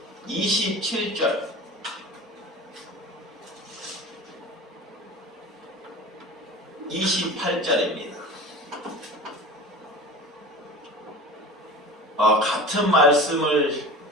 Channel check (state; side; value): normal; both; correlation 0.35